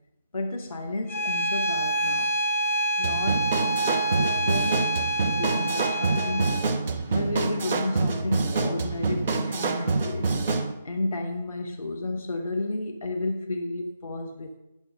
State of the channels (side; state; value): both; inverted; correlation -0.72